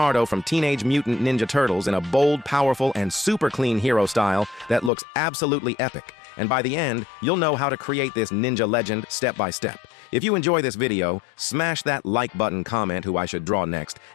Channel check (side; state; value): right; drops out; at 4.9 s